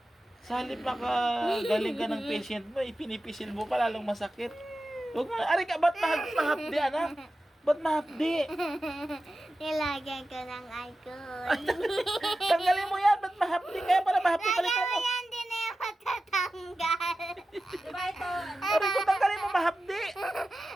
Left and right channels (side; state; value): both; normal; correlation 0.93